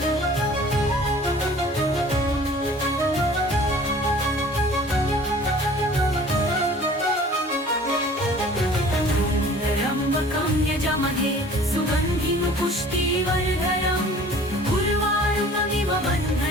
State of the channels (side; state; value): both; normal; correlation 0.48